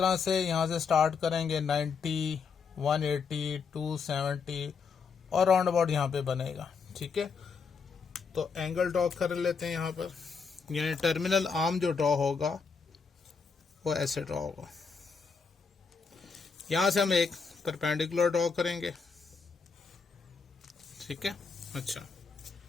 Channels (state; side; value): quieter; right; 5.4 dB